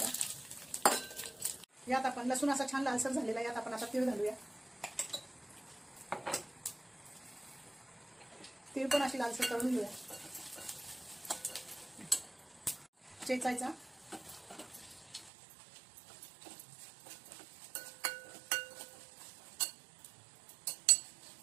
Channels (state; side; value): drops out; left; at 15.3 s